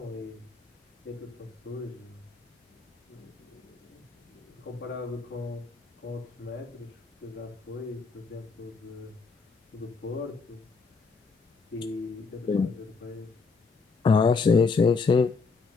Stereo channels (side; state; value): right; quieter; 4.6 dB